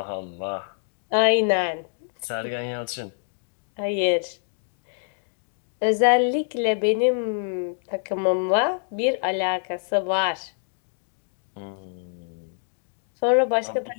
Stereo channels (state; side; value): silent; right; digital silence